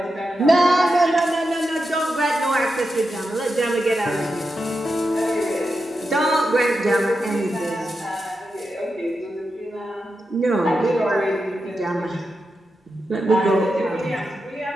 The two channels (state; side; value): normal; both; correlation 0.88